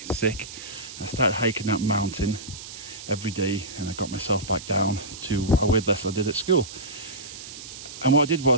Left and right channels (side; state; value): right; noise; hiss, 13 dB below the sound